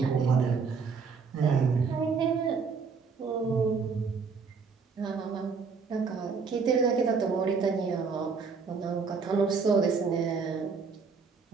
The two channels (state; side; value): quieter; left; 5.2 dB